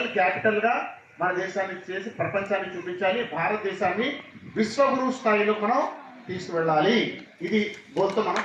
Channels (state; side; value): identical; both; correlation 1.00